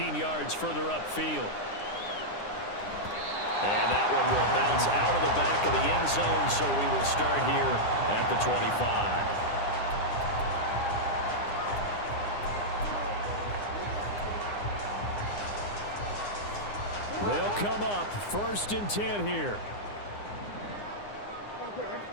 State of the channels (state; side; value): late; right; 9.8 ms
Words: yards further upfield. And that one will bounce out of the back of the end zone, so we will start here at the 25. They'll come up 1st and 10 here.